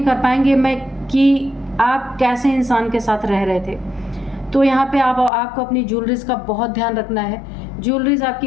कर पाएंगे कि आप कैसे इंसान के साथ रह रहे थे। तो यहाँ पे आपको अपनी ज्वेलरीज का बहुत ध्यान रखना है। ज्वेलरीज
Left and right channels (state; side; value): drops out; right; at 5.3 s